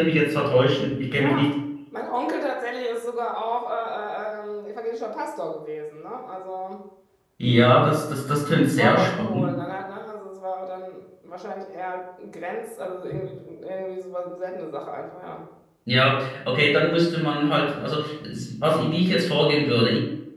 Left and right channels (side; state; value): both; identical; correlation 1.00